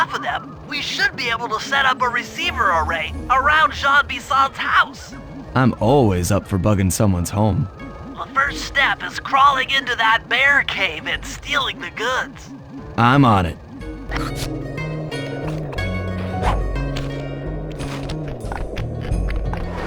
of them, we should be able to set up a receiver array around Jean Bison's house. I'm always up for bugging someone's home. The first step is crawling into that bear cave and stealing the goods. I'm on it.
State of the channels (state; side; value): identical; both; correlation 1.00